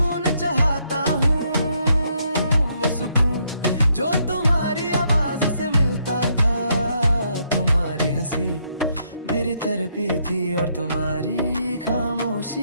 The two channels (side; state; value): both; inverted; correlation -0.73